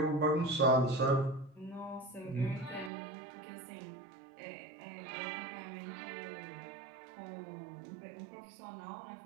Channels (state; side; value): drops out; left; at 2.9 s